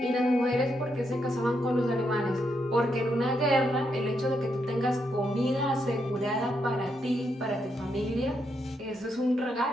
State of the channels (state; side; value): normal; both; correlation 0.80